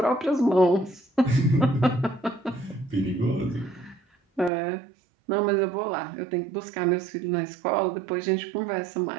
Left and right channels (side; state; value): left; drops out; at 4.5 s